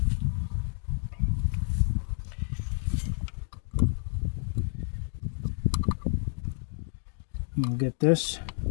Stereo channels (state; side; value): silent; right; 58 dB below the other